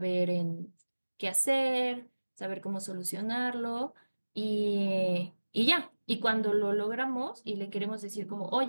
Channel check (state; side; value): inverted; both; correlation -1.00